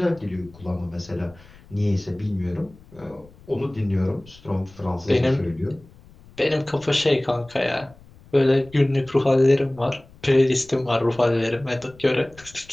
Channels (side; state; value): left; noise; rumble, 24 dB below the sound